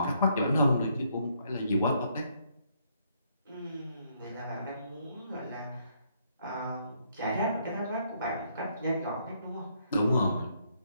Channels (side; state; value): both; inverted; correlation -0.71